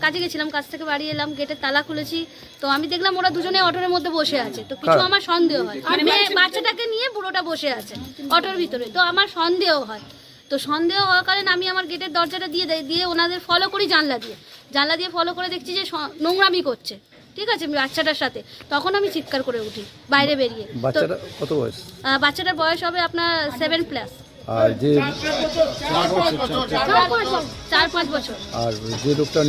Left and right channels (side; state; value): both; identical; correlation 1.00